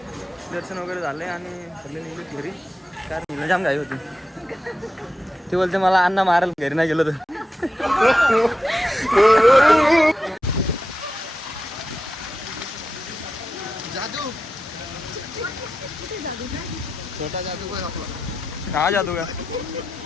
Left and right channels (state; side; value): normal; both; correlation 0.89